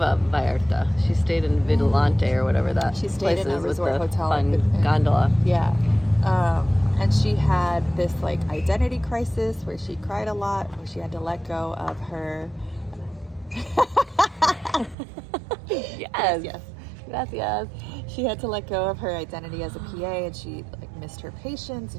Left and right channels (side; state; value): left; drops out; at 15.0 s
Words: Vallarta. She stayed in Vigilante or whatever that She stayed place in a is with resort the hotel fun in- gondola. Yeah. And she had this like identity crisis where she cried a lot, where she had to let go of her. Yes. Yes. Gracias. She had to let go of her identity as a PA, and she like missed her patients,